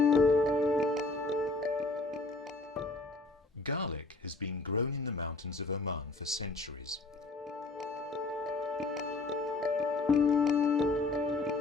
Garlic has been grown in the mountains of Oman for centuries.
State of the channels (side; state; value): right; quieter; 3.2 dB